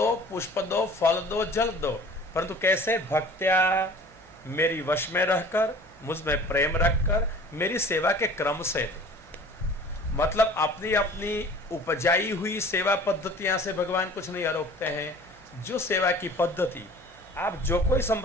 पुष्प दो, फल दो, जल दो, परंतु कैसे? भक्त्या, मेरी वश में रहकर, मुझ में प्रेम रखकर, मेरी सेवा के क्रम से दो। मतलब अपनी अपनी उपजाई हुई सेवा पद्धतियां से भगवान कुछ नहीं आरोगते हैं। जो सेवा की पद्धति, आप जो कोई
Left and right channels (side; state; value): both; normal; correlation 0.46